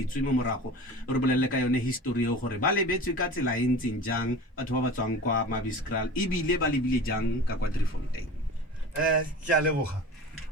mo morago. Re bolelele ka yone history eo gore ba lebetswe ka tsela e ntseng jang batho ba ba tswang kwa Mabeskraal ebile ba lebile jang ka kwa Driefontein. Ke a leboga.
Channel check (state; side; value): normal; both; correlation 0.36